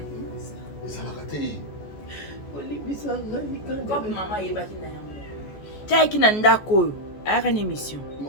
Qui n'a ndako a une émission.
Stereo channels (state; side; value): late; right; 14 ms